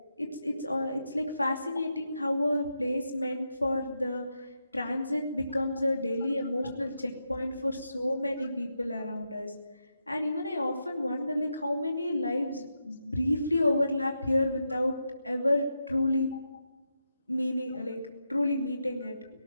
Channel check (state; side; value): inverted; both; correlation -0.85